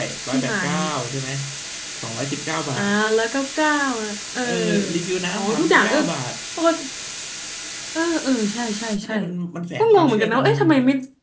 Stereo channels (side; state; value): both; identical; correlation 1.00